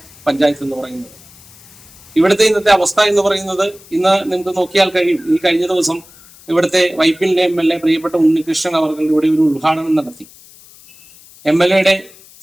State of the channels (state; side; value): noise; left; hiss, 24 dB below the sound